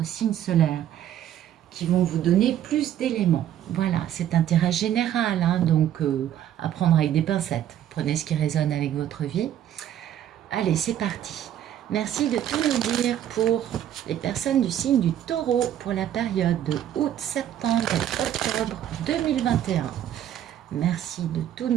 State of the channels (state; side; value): quieter; left; 10.9 dB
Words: signe solaire qui vont vous donner plus d'éléments. Voilà, c'est un tirage général, donc à prendre avec des pincettes. Prenez ce qui résonne avec votre vie. Allez, c'est parti. Merci de tout nous dire pour les personnes du signe du taureau pour la période de août, septembre et octobre 2021. Merci de tout